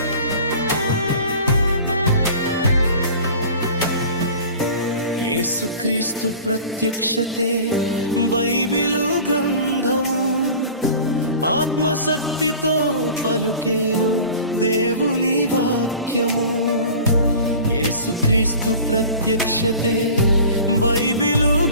యేసుక్రీస్తు ప్రత్యక్షతే బైబిలు గ్రంథము ఆత్మశక్తితో పలుకేను దేవుని వాక్యము యేసుక్రీస్తు ప్రత్యక్షతే బైబిలు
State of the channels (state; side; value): inverted; both; correlation -0.41